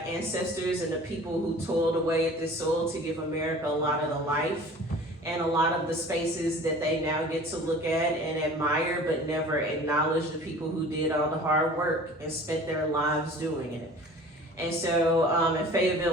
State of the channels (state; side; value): normal; both; correlation 0.44